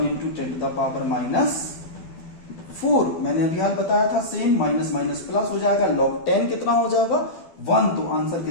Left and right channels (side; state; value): right; late; 12 ms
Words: into 10 to the power minus 4. मैंने अभी हाल बताया था सेम. माइनस माइनस प्लस हो जाएगा. लॉग 10 कितना हो जाएगा? 1. तो आंसर